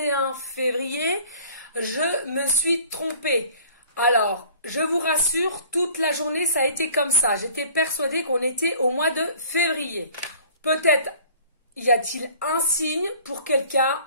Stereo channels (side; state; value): both; inverted; correlation -0.49